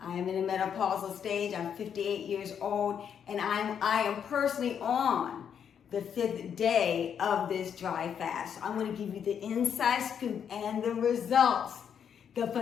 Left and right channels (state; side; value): quieter; right; 8.0 dB